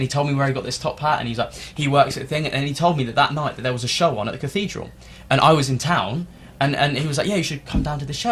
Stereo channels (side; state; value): both; identical; correlation 1.00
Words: he told me where he got this top hat, and he's like, he works at the thing, and he told me that night that there was a show on at the cathedral, and I was in town. And he was like, yeah, you should come down to this show.